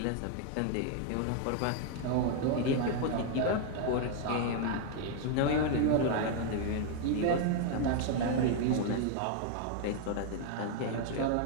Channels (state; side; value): different; both; correlation 0.00